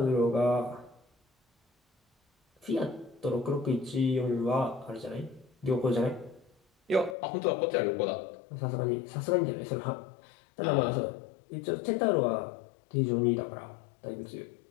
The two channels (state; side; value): drops out; right; at 7.2 s